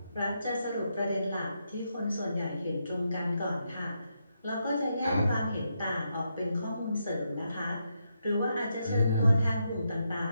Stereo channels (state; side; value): inverted; both; correlation -0.82